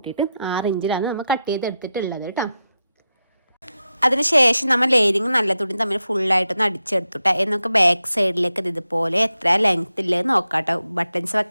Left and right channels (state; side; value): inverted; both; correlation -0.88